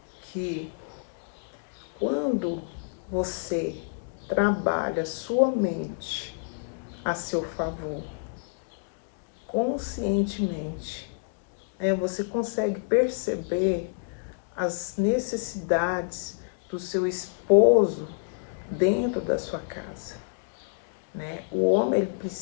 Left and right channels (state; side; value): quieter; right; 39.5 dB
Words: que quando você trabalha sua mente a seu favor, conscientemente, você consegue perceber as necessidades do seu esposo dentro da sua casa, né? O homem ele